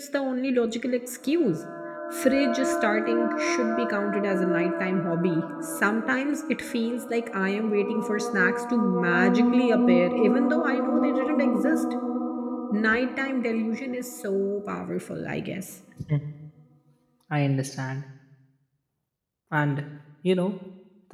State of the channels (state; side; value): identical; both; correlation 1.00